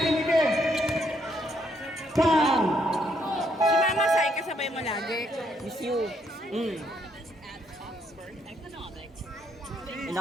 Foul. Si Mama Sai, kasabay mo lagi. Miss you.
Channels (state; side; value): normal; both; correlation 0.72